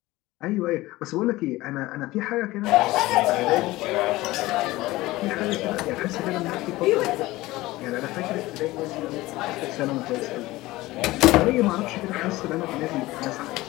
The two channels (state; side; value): quieter; right; 18.7 dB